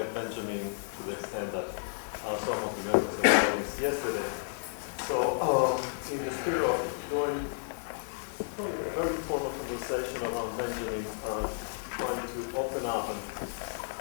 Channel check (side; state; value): right; silent; digital silence